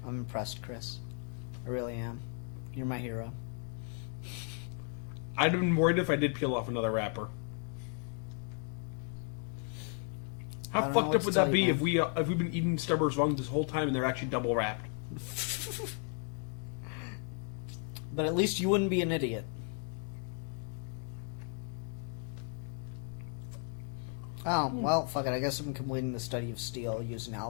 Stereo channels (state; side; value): quieter; right; 38.9 dB